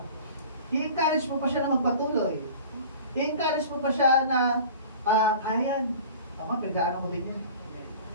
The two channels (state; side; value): inverted; both; correlation -0.41